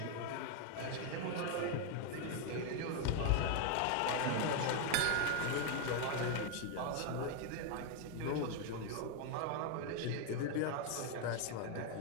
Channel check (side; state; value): both; different; correlation 0.01